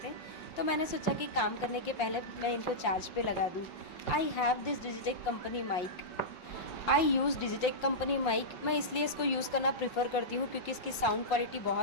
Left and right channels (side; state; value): right; late; 5.6 ms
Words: थे। तो मैंने सोचा कि काम करने के पहले मैं इनको चार्ज पे लगा दूँ। I have this Digitek company mic. I use Digitek company mic. मैं इसलिए इसको यूज़ करना प्रीफर करती हूँ क्योंकि इसकी साउंड क्वालिटी